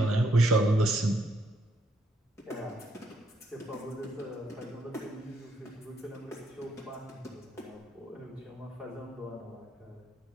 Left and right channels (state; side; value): normal; both; correlation 0.73